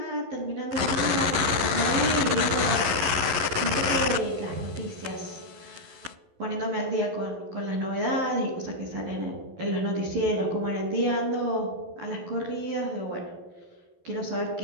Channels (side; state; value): left; late; 11 ms